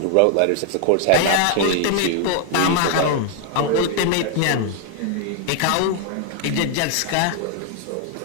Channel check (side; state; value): both; different; correlation 0.00